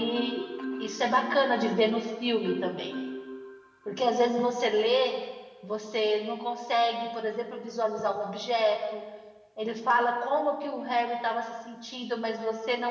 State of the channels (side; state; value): both; identical; correlation 1.00